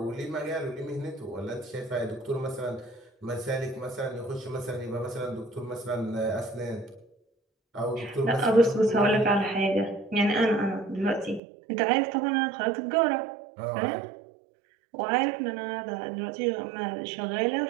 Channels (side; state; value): left; drops out; at 11.4 s